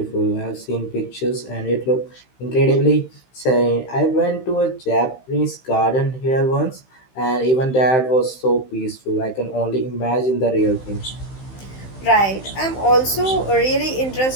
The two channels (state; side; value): late; right; 15 ms